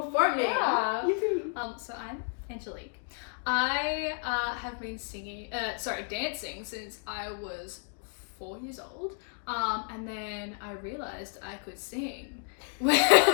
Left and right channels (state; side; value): silent; right; 57 dB below the other